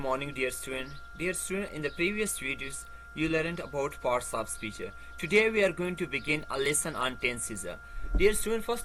dear student. Dear student, in the previous videos, you learned about parts of speech. Today we are going to begin a lesson on tenses. Dear student,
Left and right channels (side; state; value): both; identical; correlation 1.00